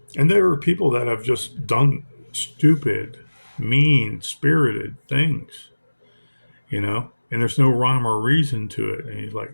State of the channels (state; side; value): inverted; both; correlation -1.00